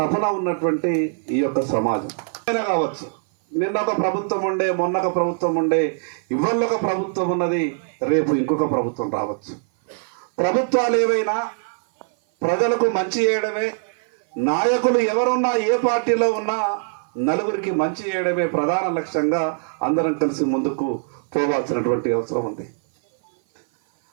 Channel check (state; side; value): silent; left; 56 dB below the other